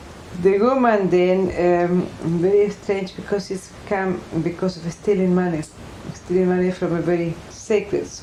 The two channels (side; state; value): both; identical; correlation 1.00